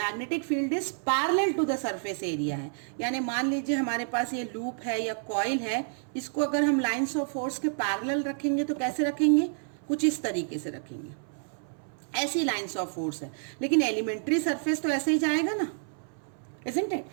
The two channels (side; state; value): left; silent; 58 dB below the other